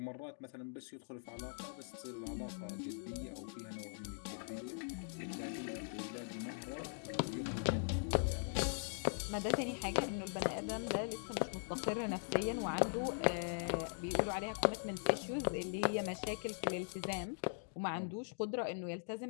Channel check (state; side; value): silent; right; digital silence